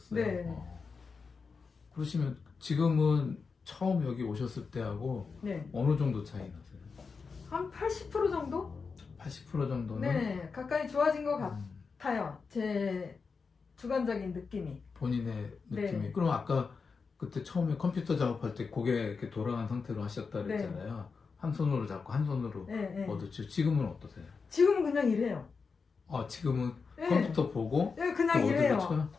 네. 그러시면 지금은 처음 여기 오셨을 때하고 네. 어느 정도 차이 나세요? 한 80% 정도? 80% 정도는? 네, 가까이 좋아진 것 음, 같아요. 제 주관적인 느낌이. 본인의 느낌이. 네. 그럼 아까 그때 처음에 컴퓨터 작업할 때 고개 이렇게 돌아간 상태로 하셨다 네. 그랬잖아요. 한 손으로 잡고 한 손으로 네, 네. 얻었죠. 지금은 어떠세요? 지금은 그냥 이래요. 지금은 네. 컴퓨터 보고 네, 그냥 또 이래요. 어디로 쳐요?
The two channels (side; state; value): right; quieter; 5.0 dB